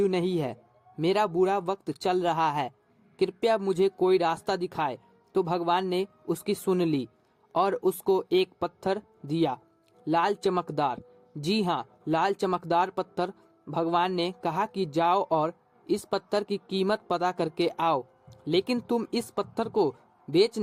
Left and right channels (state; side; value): identical; both; correlation 1.00